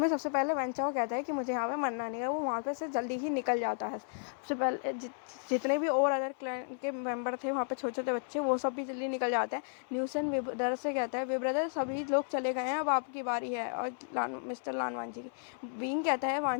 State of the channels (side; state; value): right; silent; 55 dB below the other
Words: सबसे पहले वेंचाओ कहता है कि मुझे यहाँ पे मरना नहीं है। वो वहाँ पे से जल्दी ही निकल जाता है। सबसे पहले जितने भी और अदर क्लैन के मेंबर थे वहाँ पे छोटे छोटे बच्चे वो सब भी जल्दी निकल जाते हैं। न्यूसन ब्रदर से कहता है वे ब्रदर सभी लोग चले गए हैं, अब आपकी बारी है और मिस्टर लानवांजी की। विंग कहता है